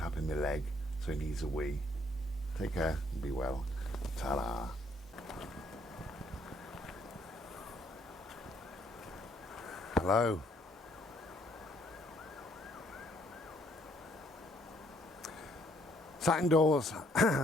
my leg, so he needs a wee. Take care and be well. Ta-da. Hello. Sat indoors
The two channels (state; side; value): normal; both; correlation 0.67